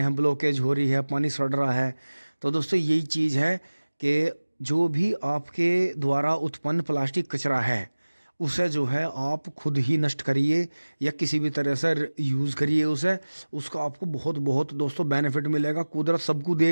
हैं, ब्लॉकेज हो रही है, पानी सड़ रहा है। तो दोस्तों यही चीज़ है कि जो भी आपके द्वारा उत्पन्न प्लास्टिक कचरा है उसे जो है आप खुद ही नष्ट करिए या किसी भी तरह से यूज़ करिए उसे, उसका आपको बहुत बहुत दोस्तों बेनिफिट मिलेगा। कुदरत सबको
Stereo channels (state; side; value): inverted; both; correlation -1.00